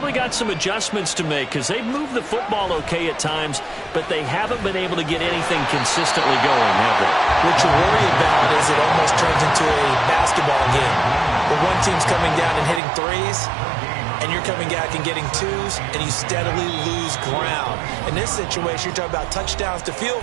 got some adjustments to make because they've moved the football okay at times, but they haven't been able to get anything consistently going, have they? What you worry about is it almost turns into a basketball game where one team's coming down and hitting threes, and you're coming back and getting twos, and you steadily lose ground. In this situation, you're talking about touchdowns to field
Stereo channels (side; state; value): left; drops out; at 12.8 s